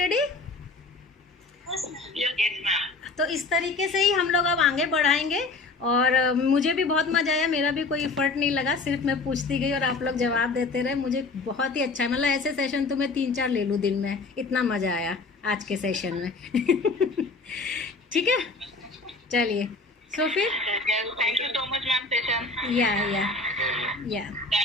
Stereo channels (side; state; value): right; quieter; 3.7 dB